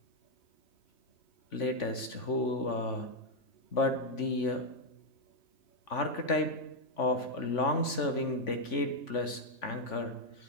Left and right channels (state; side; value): late; right; 3.5 ms